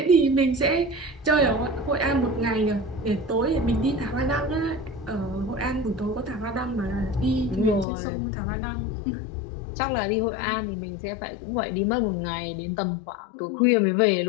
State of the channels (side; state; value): right; drops out; at 7.9 s